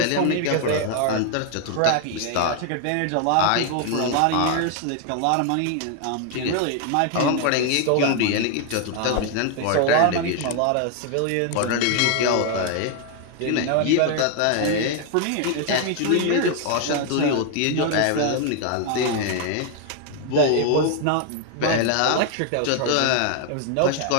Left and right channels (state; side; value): different; both; correlation 0.00